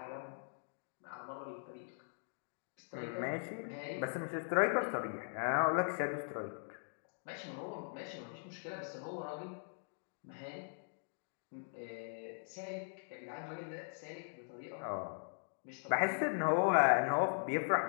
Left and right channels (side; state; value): right; silent; digital silence